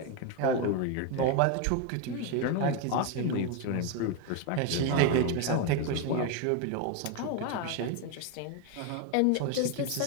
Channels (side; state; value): both; different; correlation 0.01